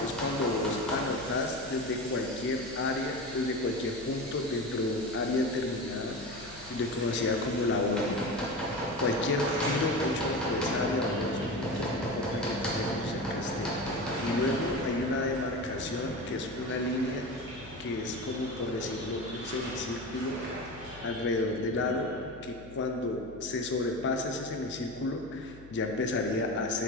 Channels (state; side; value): noise; left; hum, 19 dB below the sound